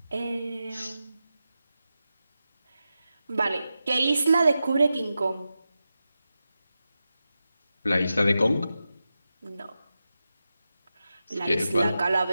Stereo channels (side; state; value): both; inverted; correlation -0.92